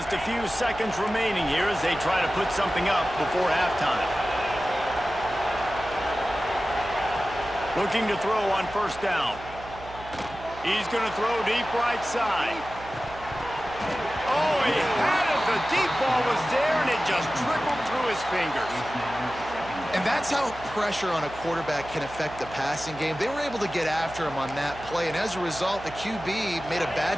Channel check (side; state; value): right; noise; hum, 16 dB below the sound